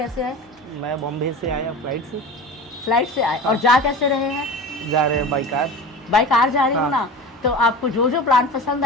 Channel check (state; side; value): normal; both; correlation 0.33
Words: आए? मैं बॉम्बे से आया फ्लाइट से आए। और जा कैसे रहे हैं? जा रहे हैं बाई कार जा रही हूँ ना। तो आपको जो प्लांट पसंद